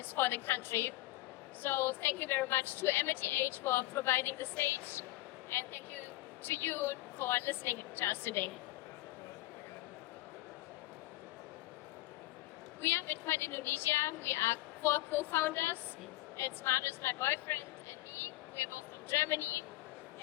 for the country. So thank you very much to AmityAge for providing the stage, and thank you to you for listening to us today. We are Bitcoin Indonesia. We are 4 co-founders. It's Marius, my boyfriend, and me. We moved from Germany.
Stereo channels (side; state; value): right; quieter; 18.4 dB